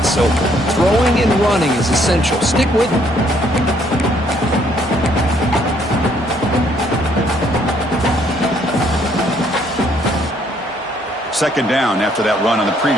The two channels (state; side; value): normal; both; correlation 0.66